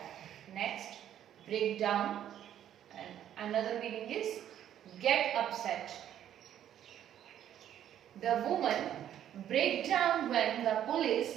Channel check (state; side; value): quieter; left; 10.7 dB